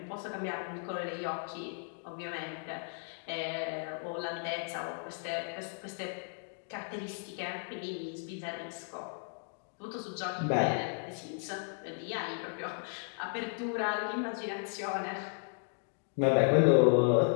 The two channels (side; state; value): right; silent; 55 dB below the other